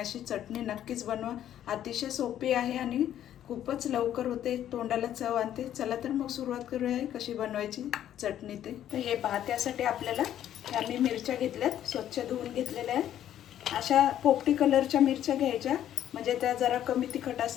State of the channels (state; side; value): quieter; right; 11.1 dB